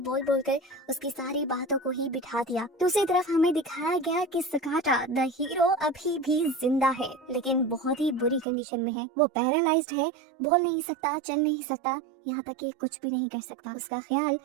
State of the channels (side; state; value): left; drops out; at 8.5 s